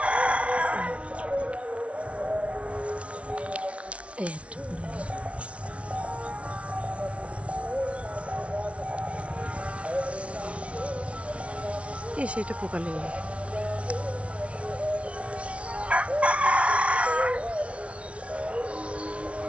একটা পড়ে গেল। সেটা পোকা লেগে গেল।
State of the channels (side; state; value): left; late; 0.062 ms